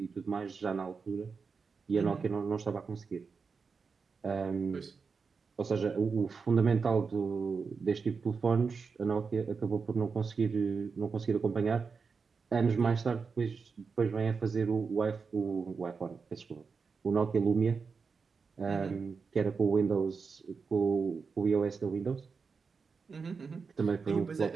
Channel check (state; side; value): quieter; left; 5.1 dB